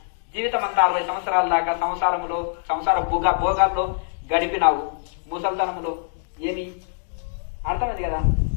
జీవితం అంతా 60 సంవత్సరాల దాకా సంసార భోగాల్లో గడిపినావు, ముసల్తనంలో ఏమి అర్థమైంది కదా.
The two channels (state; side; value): silent; right; digital silence